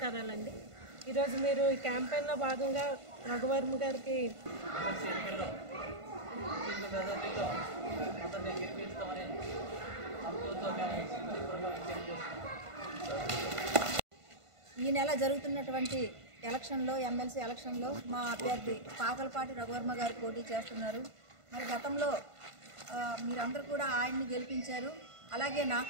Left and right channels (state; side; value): late; left; 1.5 ms